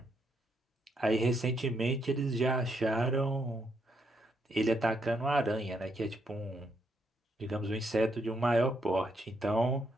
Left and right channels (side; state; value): both; normal; correlation 0.77